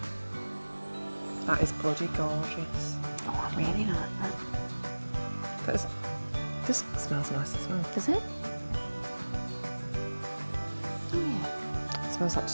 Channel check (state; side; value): inverted; both; correlation -1.00